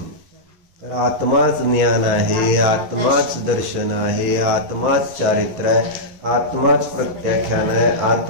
तर आत्माच ज्ञान आहे, आत्माच दर्शन आहे, आत्माच चारित्र आहे, आत्माच प्रत्याख्यान आहे,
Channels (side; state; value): left; late; 11 ms